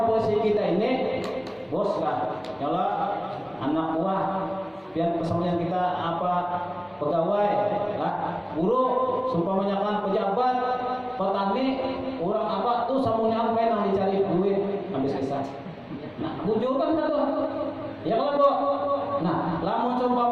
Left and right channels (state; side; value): identical; both; correlation 1.00